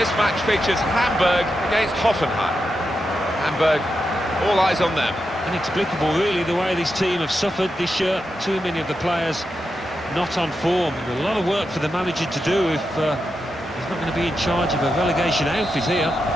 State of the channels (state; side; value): normal; both; correlation 0.87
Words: match features Hamburg against Hoffenheim. Hamburg, all eyes on them. Inexplicable really the way this team have suffered this year. Too many of the players not on form. A lot of work for the manager to do if he's not going to be in charge of a relegation outfit here.